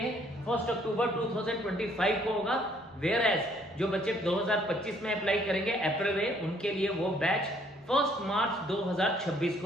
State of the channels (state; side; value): normal; both; correlation 0.64